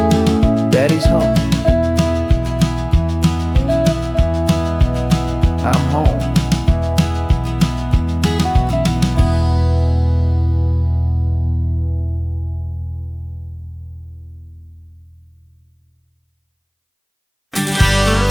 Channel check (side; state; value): both; identical; correlation 1.00